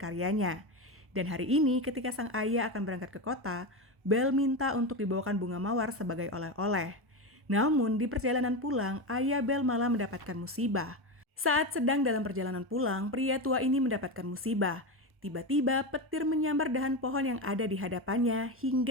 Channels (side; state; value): left; late; 1.0 ms